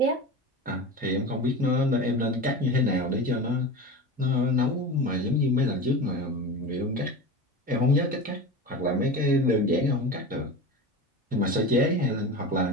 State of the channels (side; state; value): both; normal; correlation 0.28